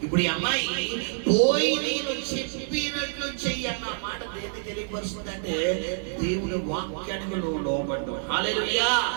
ఇప్పుడు ఈ అమ్మాయి పోయి నేను చెప్పినట్లు చెయ్యి అన్న మాట దేన్ని తెలియపరుస్తుందంటే దేవుని వాక్యానికి నువ్వు లోబడ్డావు. హల్లెలూయా.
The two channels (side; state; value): left; silent; 56 dB below the other